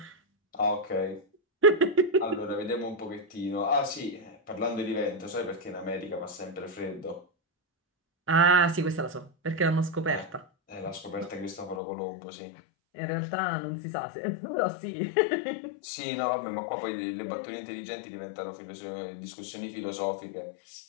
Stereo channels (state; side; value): drops out; right; at 11.8 s